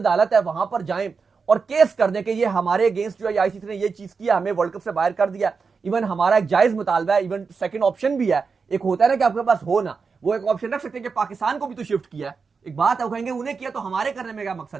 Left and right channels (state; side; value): quieter; left; 5.1 dB